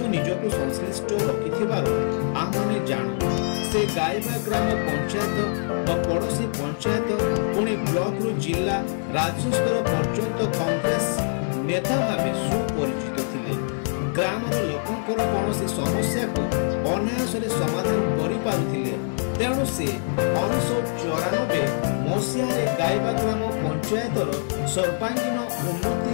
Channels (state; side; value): silent; right; 62 dB below the other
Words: निजको संश्लिष्ट रखिथिबार आमाने जानू। से गाइबा ग्राम पंचायत और पड़ोसी पंचायत पुणी ब्लॉक रु जिला राज्य स्तर पर्यंत कांग्रेस नेता भावे सुपरिचित थिले। ग्रामर लोकंकर कौनसी समस्या को अनायास समाधान करि पारुथिले। तेणु से 1994 मसीह गाइबा ग्राम पंचायतर सर्वांगीन